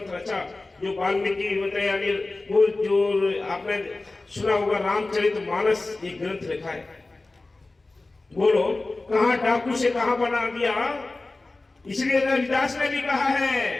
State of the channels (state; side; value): quieter; right; 3.2 dB